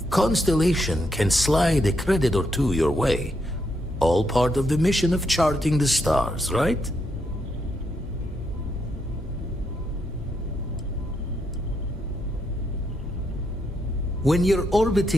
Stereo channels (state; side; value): normal; both; correlation 0.79